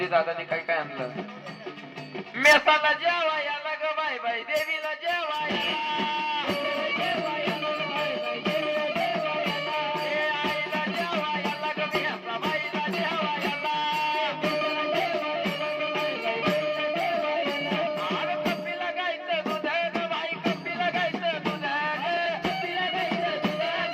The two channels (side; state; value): both; identical; correlation 1.00